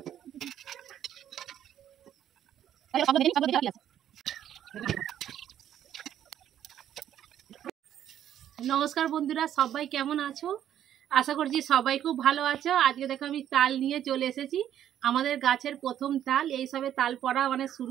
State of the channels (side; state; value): left; quieter; 10.7 dB